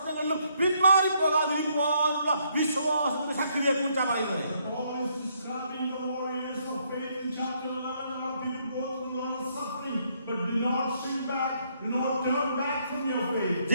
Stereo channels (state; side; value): inverted; both; correlation -0.71